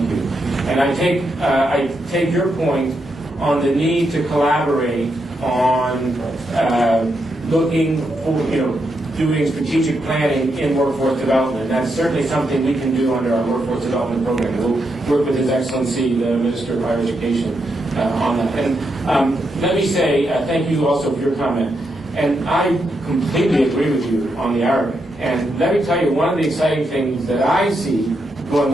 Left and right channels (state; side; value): normal; both; correlation 0.82